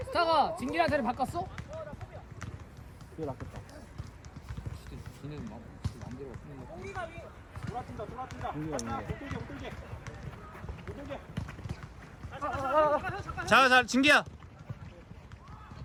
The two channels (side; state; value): both; identical; correlation 1.00